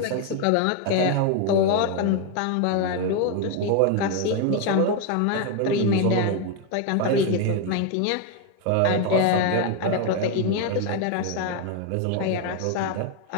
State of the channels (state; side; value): different; both; correlation 0.01